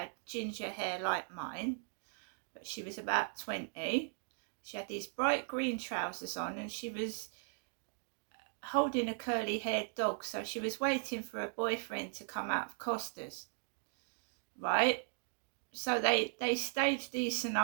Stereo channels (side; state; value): left; silent; 52 dB below the other